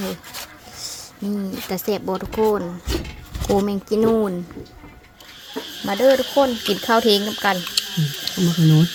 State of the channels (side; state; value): both; identical; correlation 1.00